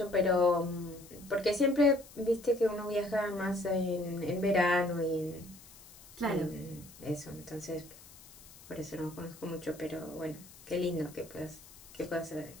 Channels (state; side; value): noise; left; hiss, 20 dB below the sound